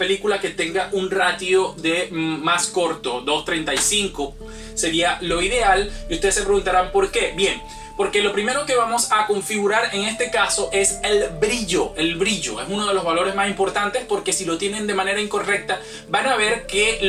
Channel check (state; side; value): identical; both; correlation 1.00